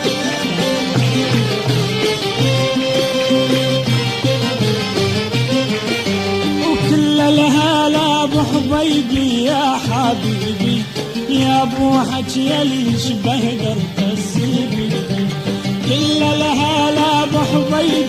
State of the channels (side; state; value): both; identical; correlation 1.00